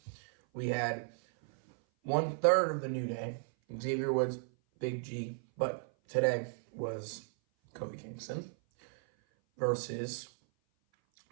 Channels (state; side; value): silent; left; 55 dB below the other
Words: we had 1/3 of the New Day, Xavier Woods, Big G, but today was Kofi Kingston versus